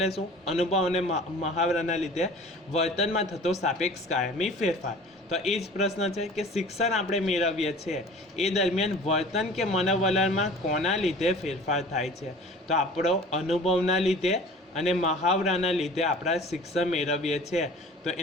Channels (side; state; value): both; normal; correlation 0.44